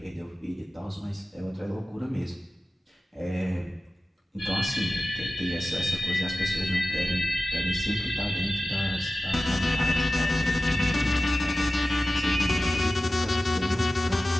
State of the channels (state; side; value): normal; both; correlation 0.95